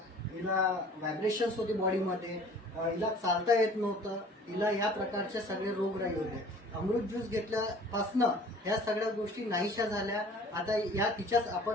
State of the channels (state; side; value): normal; both; correlation 0.49